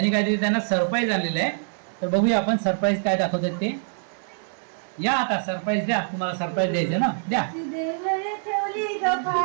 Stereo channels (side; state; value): left; silent; digital silence